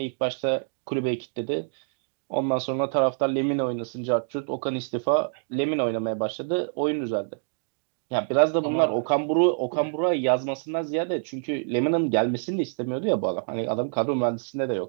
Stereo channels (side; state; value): left; silent; digital silence